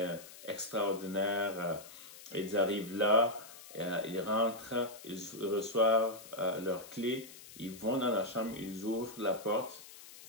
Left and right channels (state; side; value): noise; left; hiss, 17 dB below the sound